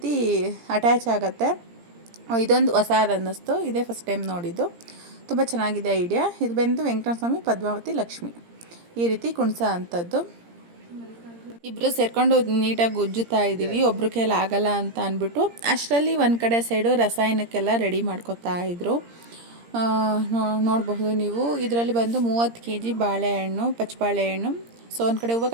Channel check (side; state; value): left; late; 17 ms